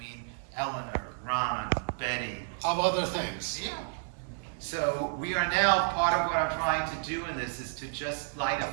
Eleanor, Ron, Betty. Of other things. Yeah. So we are now, part of what I'm trying to do in this is to just light a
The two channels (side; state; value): left; silent; digital silence